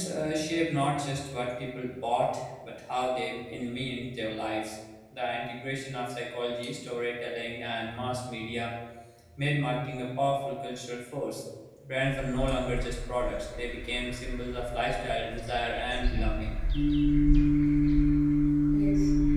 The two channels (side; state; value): both; identical; correlation 1.00